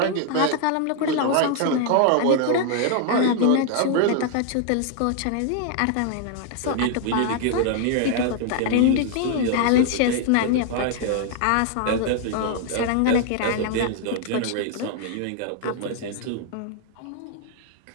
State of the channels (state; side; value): different; both; correlation 0.00